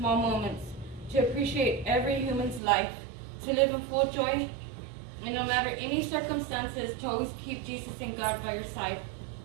moments, to appreciate every human's life, to live in full joy, and no matter any circumstances, to always keep Jesus and God by your side.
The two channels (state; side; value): drops out; left; at 2.6 s